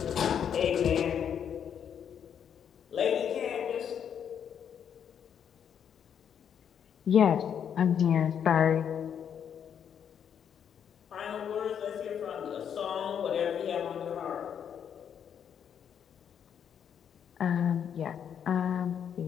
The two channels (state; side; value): quieter; right; 8.3 dB